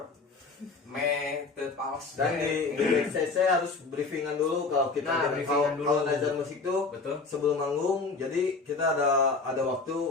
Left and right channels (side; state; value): right; quieter; 4.1 dB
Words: teu pals Dan di backstage saya harus briefingan dulu kalau kita Nah, briefingan dulu. kalau Nazar musik tuh betul. sebelum manggung. Jadi kita ada waktu